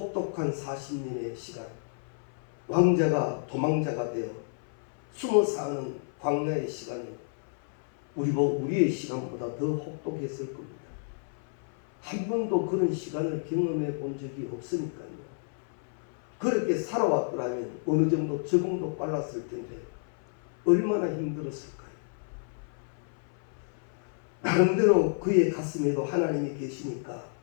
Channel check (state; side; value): silent; right; 56 dB below the other